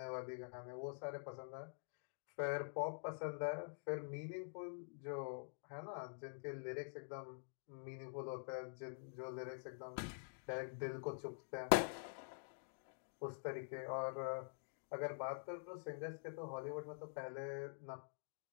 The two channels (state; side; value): silent; right; digital silence